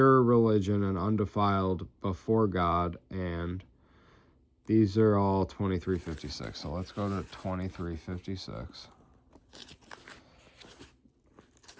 religion and undefiled before God, and these are all 23:56. So let's go to 23:56.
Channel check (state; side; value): identical; both; correlation 1.00